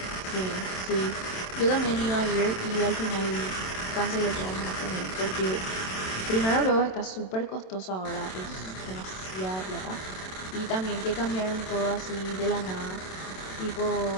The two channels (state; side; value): late; right; 27 ms